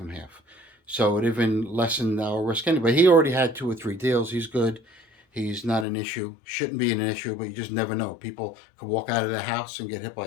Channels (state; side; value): drops out; right; at 5.9 s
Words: half. So it even lessened our risk anyway. He already had 2 or 3 deals. He's good. He's not an issue. Shouldn't be an issue, but you just never know. People could walk out of their house and get hit by